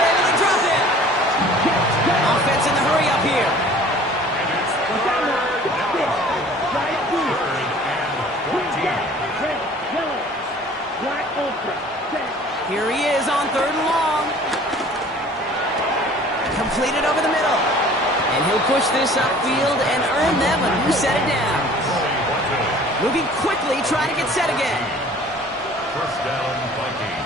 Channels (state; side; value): normal; both; correlation 0.49